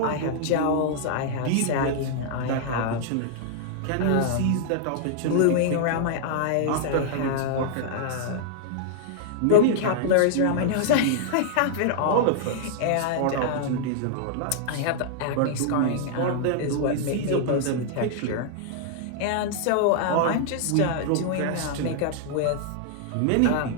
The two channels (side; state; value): both; different; correlation -0.01